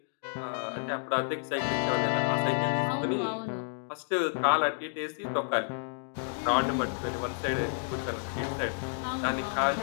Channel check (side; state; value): right; silent; digital silence